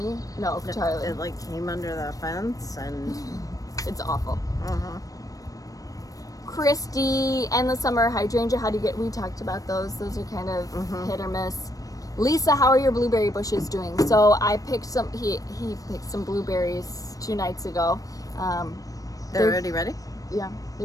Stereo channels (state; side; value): late; right; 0.17 ms